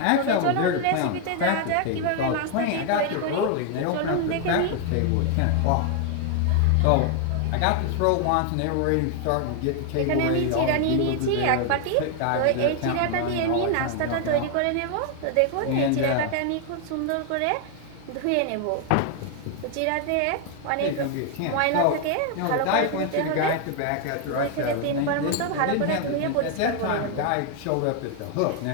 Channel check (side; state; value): both; different; correlation 0.00